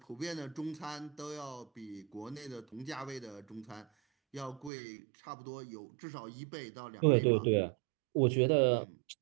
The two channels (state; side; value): drops out; left; at 4.7 s